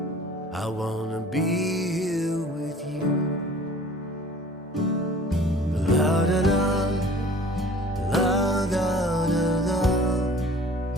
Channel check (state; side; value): normal; both; correlation 0.48